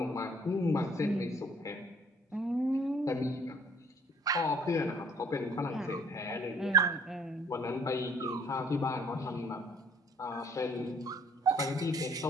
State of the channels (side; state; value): both; normal; correlation 0.59